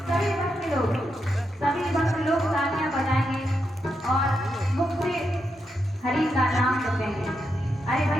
सभी भक्त लोग तालियां बजाएंगे और मुख से हरि का नाम जपेंगे। अरे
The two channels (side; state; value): both; normal; correlation 0.84